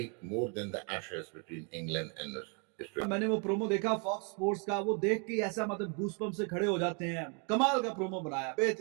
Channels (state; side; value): quieter; left; 35.8 dB